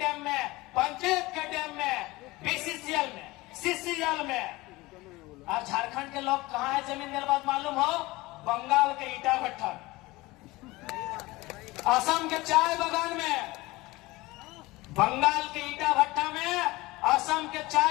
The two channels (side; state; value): right; quieter; 20.7 dB